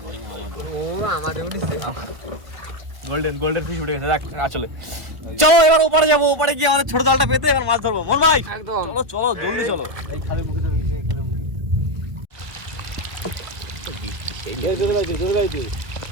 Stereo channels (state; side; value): late; left; 1.5 ms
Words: ও আমাদের উঠেছে গোল্ডেন ফিশ উঠে গেছে দেখ আসলে চলো এবার ওপারে যাবো ওপারে গিয়ে আমাদের ছোট জালটা পেতে এবার মাছ ধরবো মন ভাই একদম চলো চলো জলদি চলো